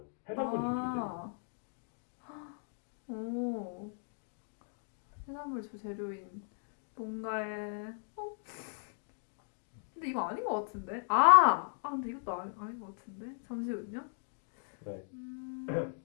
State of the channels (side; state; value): right; silent; digital silence